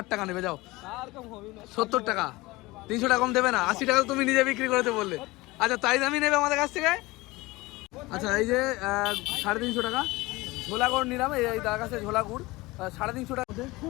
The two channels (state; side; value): quieter; right; 21.3 dB